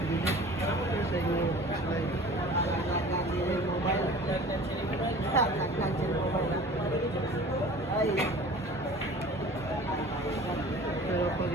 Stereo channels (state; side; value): normal; both; correlation 0.43